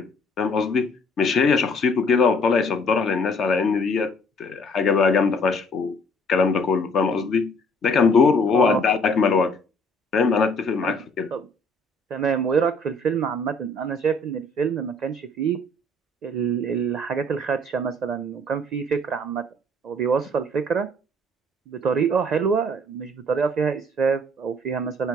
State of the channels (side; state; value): both; normal; correlation 0.59